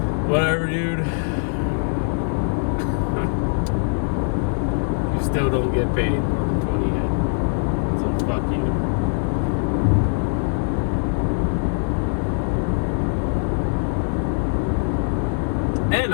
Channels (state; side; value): silent; right; 64 dB below the other